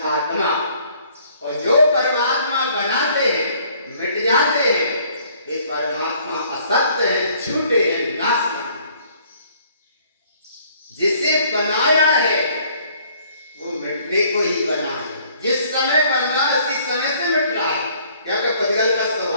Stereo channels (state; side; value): inverted; both; correlation -0.60